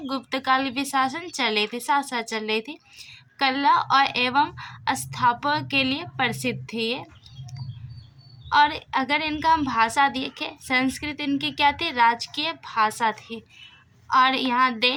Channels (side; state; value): both; identical; correlation 1.00